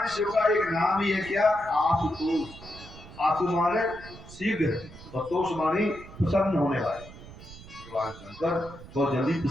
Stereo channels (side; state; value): right; noise; rumble, 17 dB below the sound